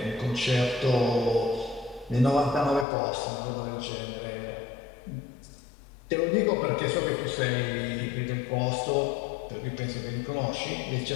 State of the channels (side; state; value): right; drops out; at 2.9 s